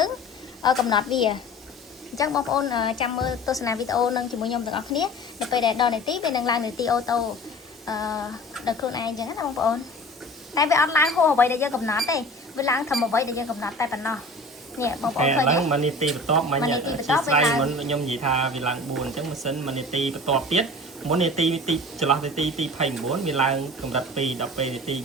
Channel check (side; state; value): both; normal; correlation 0.40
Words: ងកំណត់វាអញ្ចឹងបងប្អូនចាំមើលទស្សនាវីដេអូនឹងជាមួយខ្ញុំទាំងអស់គ្នានៅពេលដែលដល់នាទីវានឹងឡើងនាទីអូតូដល់ខ្លួនឯងអញ្ចឹងណាបងប្អូនតែវាអត់ឡើងហួសអ្វីដែលយើងកំណត់ទេវាឡើងត្រឹមអ្វីដែលយើងកំណត់តែប៉ុណ្ណោះនេះបងប្អូនឃើញឡើងមួយនាទីបន្ទាប់មិញស្លាយមុនខ្ញុំនិយាយថាវាឡើង4អញ្ចឹងម៉ាស៊ីនមួយនាទីបន្ទាប់ទៀតមុននាទីចន្លោះនាទីទី29វាឡើងកម្រិត2ដល់ពេលនាទី